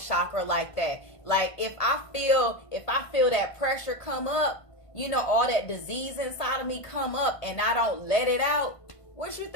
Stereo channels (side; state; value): right; late; 1.5 ms